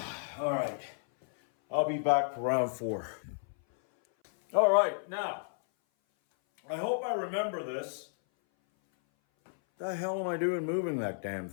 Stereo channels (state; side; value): silent; right; 56 dB below the other